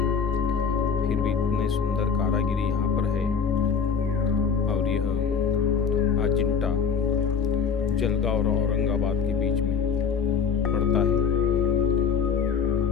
फिर भी इतने सुंदर कारीगरी यहाँ पर है। और यह अजंता जलगांव और औरंगाबाद के बीच में पड़ता है।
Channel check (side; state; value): right; quieter; 6.3 dB